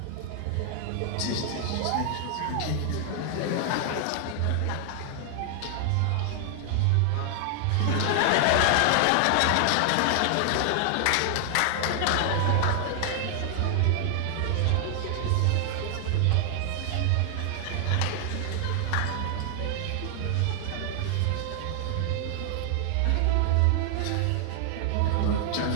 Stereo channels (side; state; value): both; different; correlation 0.00